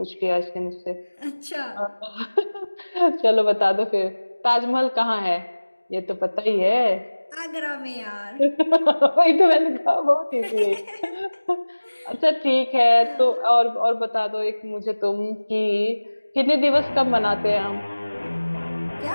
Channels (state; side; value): inverted; both; correlation -1.00